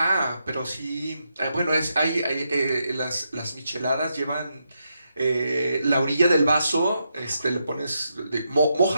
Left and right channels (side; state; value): both; inverted; correlation -0.83